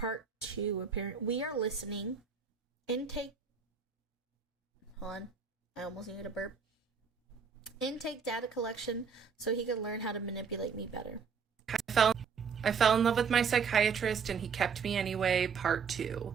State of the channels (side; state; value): left; quieter; 6.1 dB